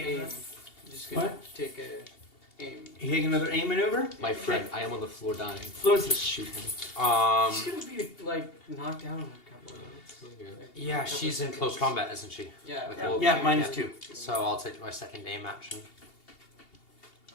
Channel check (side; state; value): right; late; 2.8 ms